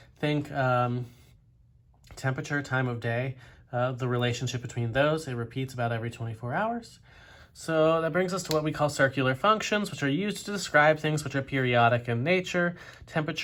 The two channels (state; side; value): identical; both; correlation 1.00